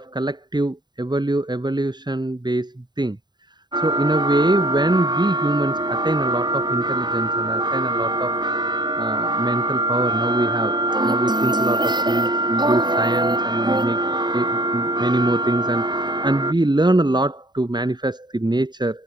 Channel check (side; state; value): left; late; 0.21 ms